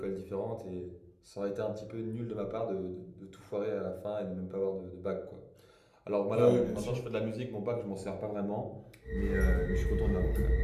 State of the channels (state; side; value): identical; both; correlation 1.00